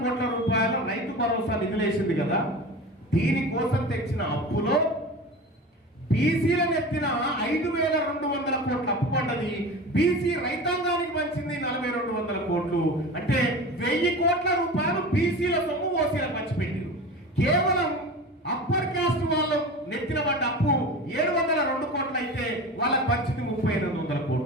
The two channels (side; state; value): both; normal; correlation 0.32